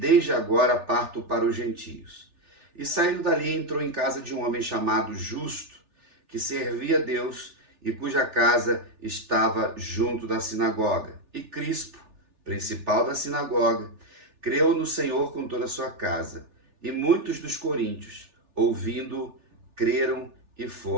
agora parto para os gentios. E saindo dali entrou em casa de um homem chamado Justo, que servia a Deus e cuja casa estava junto da sinagoga. E Crispo, principal da sinagoga, creu no Senhor com toda a sua casa. E muitos dos coríntios, ouvindo, creram e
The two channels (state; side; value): late; left; 3.4 ms